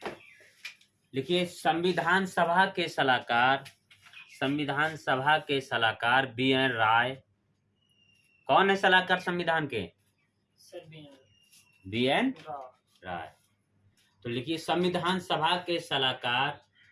लिखिए संविधान सभा के सलाहकार, संविधान सभा के सलाहकार बी एन राय। कौन है सलाहकार संविधान के? सर बी एन राय। राय। तो लिखिए संविधान सभा के सलाहकार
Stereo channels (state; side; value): identical; both; correlation 1.00